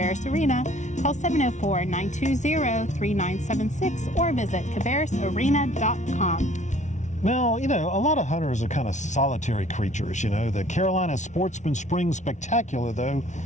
Arena, call 704-920-3976 or visit cabarrusarena.com. Now, a lot of hunters are kind of solitary creatures. The Carolina Sportsman Spring Spectacular, though,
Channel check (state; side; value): late; right; 0.35 ms